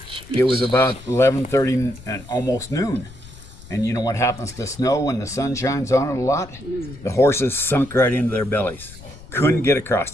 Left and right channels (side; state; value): left; noise; rumble, 18 dB below the sound